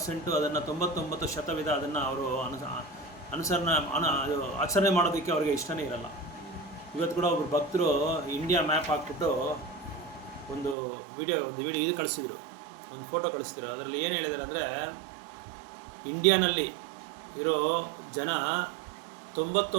ಅದನ್ನು 99% ಅದನ್ನು ಅವರು ಆಚರಣೆ ಮಾಡೋದಕ್ಕೆ ಅವ್ರಿಗೆ ಇಷ್ಟನೇ ಇರಲ್ಲ. ಇವತ್ತು ಕೂಡ ಒಬ್ಬರು ಭಕ್ತರು ಇಂಡಿಯಾ ಮ್ಯಾಪ್ ಹಾಕ್ಬಿಟ್ಟು ಒಂದು ವಿಡಿಯೋ ಇದು ಕಳಿಸಿದ್ರು, ಒಂದು ಫೋಟೋ ಕಳಿಸಿದ್ರು. ಅದರಲ್ಲಿ ಏನು ಹೇಳಿದ್ದಾರೆ ಅಂದರೆ, ಇಂಡಿಯಾನಲ್ಲಿ ಇರೋ ಜನ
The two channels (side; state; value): left; drops out; at 10.8 s